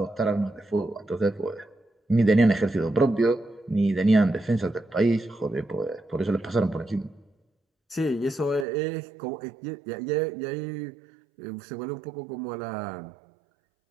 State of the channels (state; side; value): drops out; left; at 8.7 s